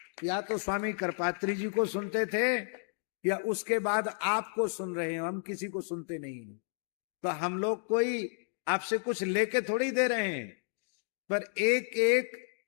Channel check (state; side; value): silent; right; 56 dB below the other